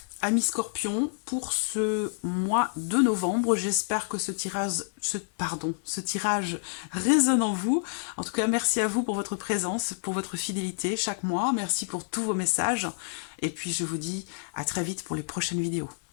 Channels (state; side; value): silent; right; digital silence